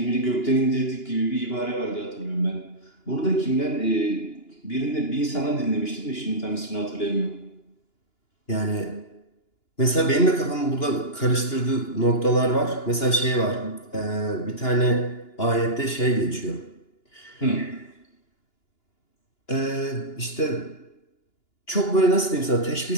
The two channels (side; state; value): right; late; 2.9 ms